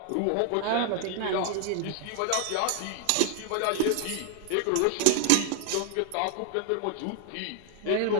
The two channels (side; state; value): both; different; correlation 0.00